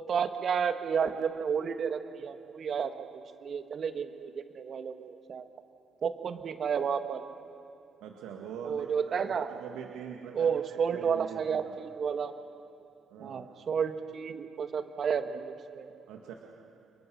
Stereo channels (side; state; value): left; quieter; 6.5 dB